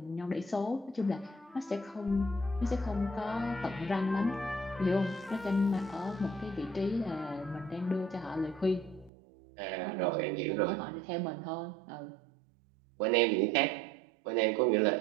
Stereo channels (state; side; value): drops out; left; at 9.1 s